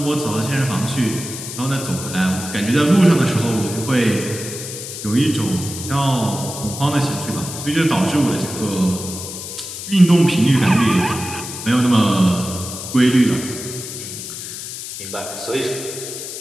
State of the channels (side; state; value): left; noise; hiss, 9 dB below the sound